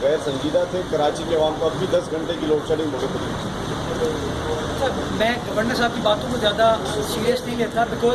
غیر سنجیدہ تھے, کراچی کے عوام کو اب بھی 10 گھنٹے کی لوڈ شیڈنگ بہت ہوئی. میں گورنر صاحب کی باتوں کو زیادہ سیریس نہیں لیتا,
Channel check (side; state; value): both; identical; correlation 1.00